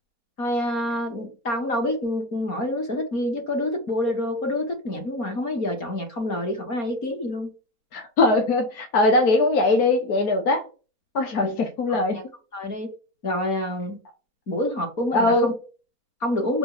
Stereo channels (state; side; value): late; right; 4.3 ms